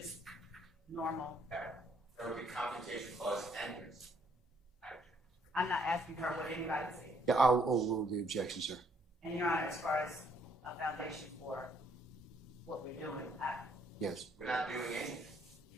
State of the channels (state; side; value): normal; both; correlation 0.67